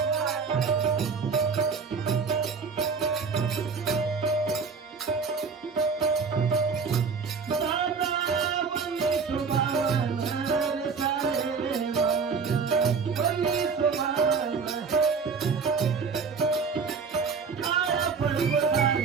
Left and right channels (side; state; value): left; quieter; 5.3 dB